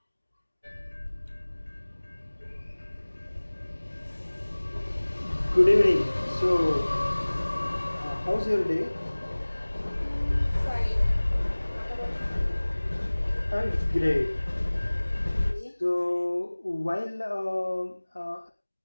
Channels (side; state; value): both; inverted; correlation -1.00